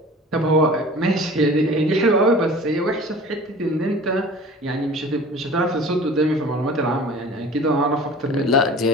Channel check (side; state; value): both; normal; correlation 0.42